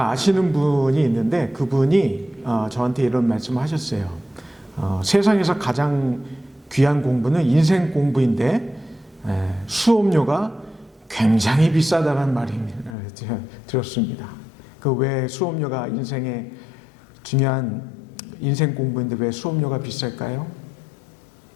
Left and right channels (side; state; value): right; drops out; at 13.0 s